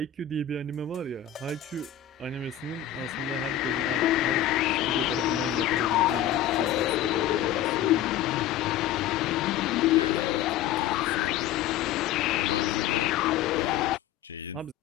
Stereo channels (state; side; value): quieter; right; 10.7 dB